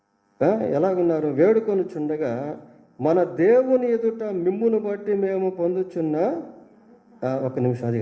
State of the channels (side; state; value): both; identical; correlation 1.00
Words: ఎలాగున్నారు? వేడుకొని చుండగా మన దేవుని ఎదుట మిమ్మును బట్టి మేము పొందుచున్న ఒక నిమిషం, అది